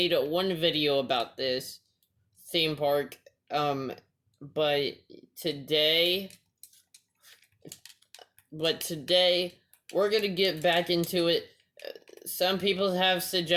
one video about this theme park. Um, but today, today we're gonna get back into it. Some people have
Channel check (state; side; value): identical; both; correlation 1.00